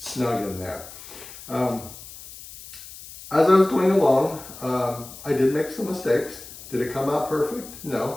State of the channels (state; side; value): noise; left; hiss, 15 dB below the sound